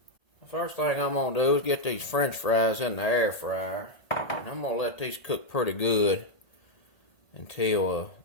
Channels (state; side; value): late; right; 1.8 ms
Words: The first thing I'm going to do is get these french fries in the air fryer. And I'm going to let these cook pretty good until